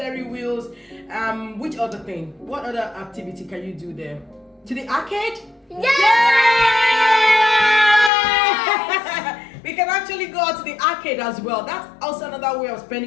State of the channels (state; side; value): drops out; right; at 8.1 s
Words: wheels. Which other thing? What other activity can you do there? To the arcade? We can actually go out to the arcade as well. That's also another way of